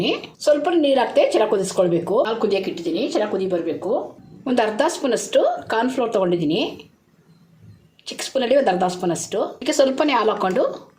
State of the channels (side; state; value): both; identical; correlation 1.00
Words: ಸ್ವಲ್ಪ ನೀರು ಹಾಕ್ತೆ ಚೆನ್ನಾಗಿ ಕುದಿಸ್ಕೊಳ್ಬೇಕು. ಹಾಲು ಕುದಿಯೋಕೆ ಇಟ್ಟಿದ್ದೀನಿ, ಚೆನ್ನಾಗಿ ಕುದಿ ಬರಬೇಕು. ಒಂದು ಅರ್ಧ ಸ್ಪೂನಷ್ಟು ಕಾರ್ನ್ಫ್ಲೋರ್ ತೊಗೊಂಡಿದ್ದೀನಿ. ಚಿಕ್ಕ ಸ್ಪೂನಲ್ಲಿ ಒಂದು ಅರ್ಧ ಸ್ಪೂನಷ್ಟು. ಇದಕ್ಕೆ ಸ್ವಲ್ಪನೇ ಹಾಲು ಹಾಕ್ಕೊಂಡು